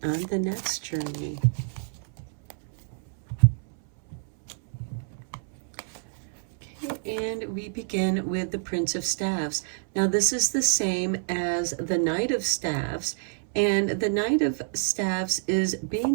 on the next journey. Okay, and we begin with the Prince of Staves. Now this is the same as the Knight of Staves, and the Knight of Staves is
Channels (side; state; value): left; silent; 60 dB below the other